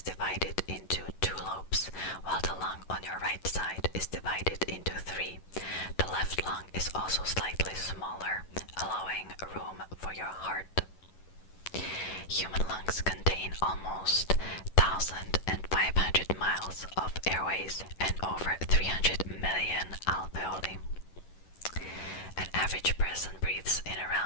divided into 2 lobes, while the lung on your right side is divided into 3. The left lung is also slightly smaller, allowing room for your heart. Human lungs contain almost 1,500 miles of airways and over 300 million alveoli. An average person breathes in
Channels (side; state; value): right; late; 11 ms